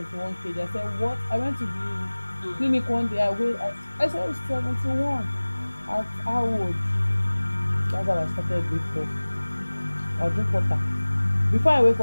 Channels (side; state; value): both; inverted; correlation -1.00